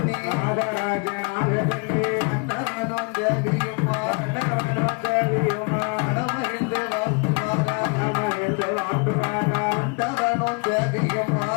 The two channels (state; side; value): quieter; right; 34.9 dB